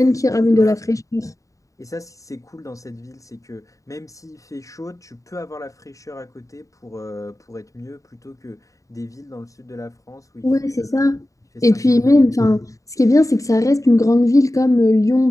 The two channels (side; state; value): right; late; 0.16 ms